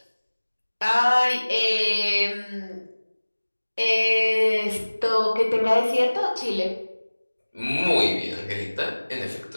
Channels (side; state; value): both; inverted; correlation -1.00